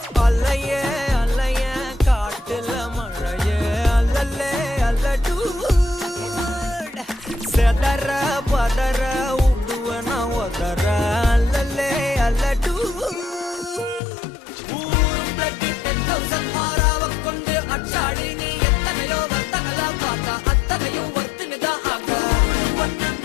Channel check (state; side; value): drops out; right; at 14.0 s